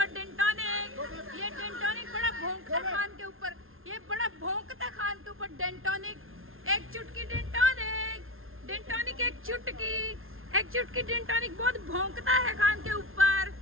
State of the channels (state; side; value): late; left; 0.61 ms